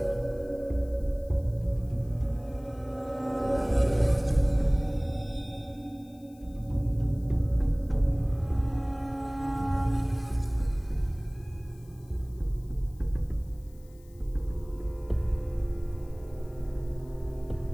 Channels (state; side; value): noise; left; hiss, 29 dB below the sound